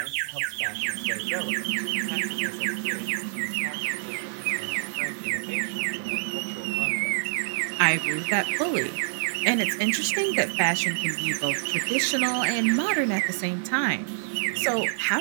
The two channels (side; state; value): left; silent; digital silence